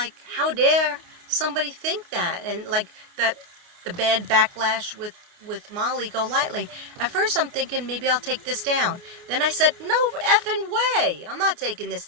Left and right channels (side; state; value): left; late; 29 ms